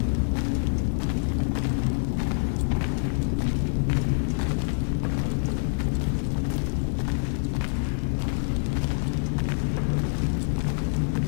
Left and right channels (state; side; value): silent; right; 61 dB below the other